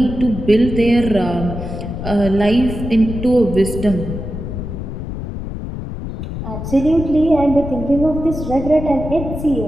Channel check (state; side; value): noise; left; rumble, 7 dB below the sound